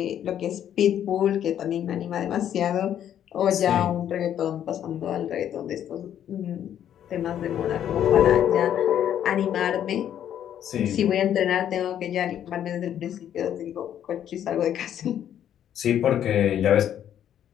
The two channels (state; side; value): quieter; right; 10.2 dB